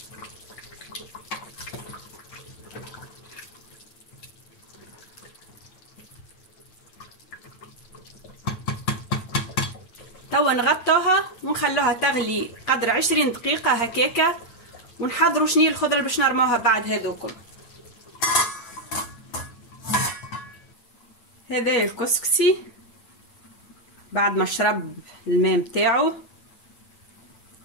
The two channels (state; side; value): late; right; 8.9 ms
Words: توا نغطوها ونخلوها تغلي قدر 20 دقيقة هكاكا، ونحضروا شني الخضرة اللي باش نرموها بعد هذوكم. هذا الكسكسي بعد ما شرب الماء متاعو